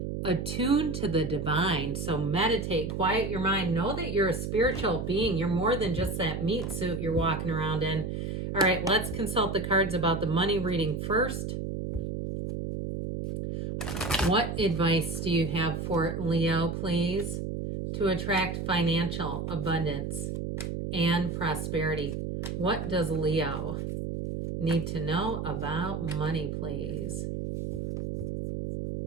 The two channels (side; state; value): right; noise; hum, 4 dB below the sound